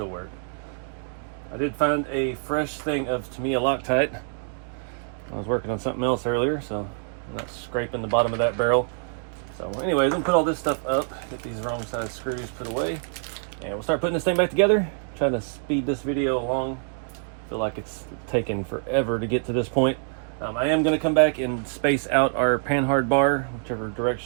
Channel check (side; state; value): left; silent; 61 dB below the other